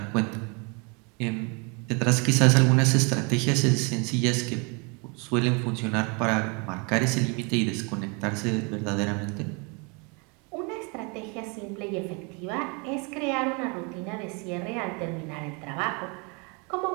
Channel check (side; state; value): left; quieter; 32.3 dB